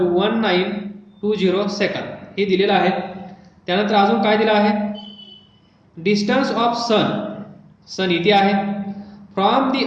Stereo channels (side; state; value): both; identical; correlation 1.00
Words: 1920 second, हे दिलेलं आहे. त्यानंतर अजून काय दिलं आहे डिस्टन्स ऑफ सन, सन इथे आहे, फ्रॉम दी